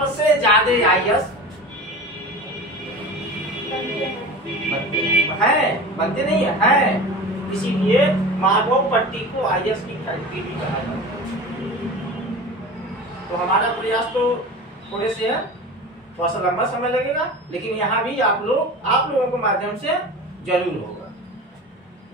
ज्यादा आईएएस बनते नहीं है, इसीलिए माधवपट्टी को आईएएस की फैक्ट्री भी कहा जाता है। तो हमारा प्रयास तो थोड़े से है, थोड़ा सा लंबा समय लगेगा, लेकिन यहाँ भी आप लोगों के माध्यम से जरूर होगा।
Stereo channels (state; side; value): normal; both; correlation 0.33